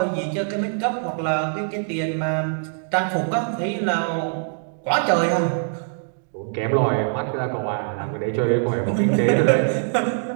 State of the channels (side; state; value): left; silent; digital silence